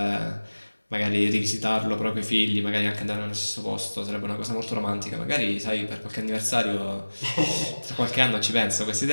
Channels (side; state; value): both; inverted; correlation -1.00